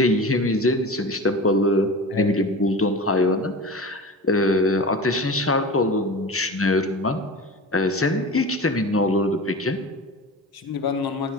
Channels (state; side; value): normal; both; correlation 0.32